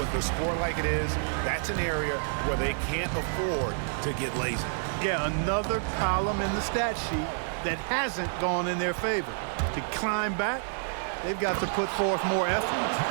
with the score like it is, that's an area where they can't afford to get lazy. Yeah, another column in the stat sheet that hasn't gone in their favor. To climb back, they've got to put forth more effort.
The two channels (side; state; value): left; silent; 59 dB below the other